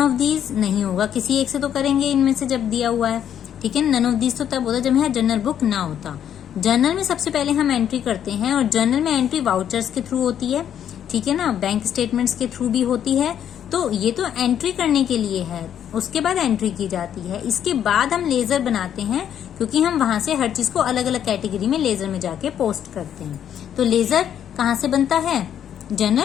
दीज नहीं होगा, किसी एक से तो करेंगे इनमें से जब दिया हुआ है। ठीक है, नन ऑफ दीज तो तब होता जब यहाँ जर्नल बुक ना होता। जर्नल में सबसे पहले हम एंट्री करते हैं, और जर्नल में एंट्री वाउचर्स के थ्रू होती है। ठीक है ना, बैंक स्टेटमेंट्स के थ्रू भी होती है। तो ये तो एंट्री करने के लिए है, उसके बाद एंट्री की जाती है। इसके बाद हम लेजर बनाते हैं, क्योंकि हम वहां से हर चीज को अलग अलग कैटेगरी में लेजर में जाके पोस्ट करते हैं। तो लेजर कहाँ से बनता है?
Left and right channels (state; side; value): quieter; right; 9.6 dB